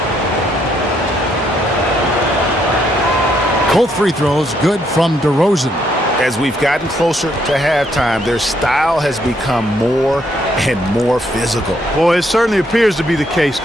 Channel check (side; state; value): both; normal; correlation 0.72